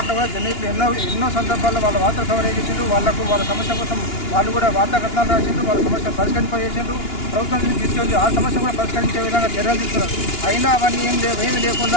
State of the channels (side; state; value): right; late; 2.9 ms